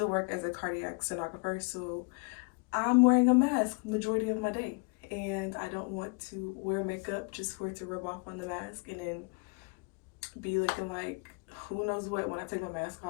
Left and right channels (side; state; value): right; quieter; 32.5 dB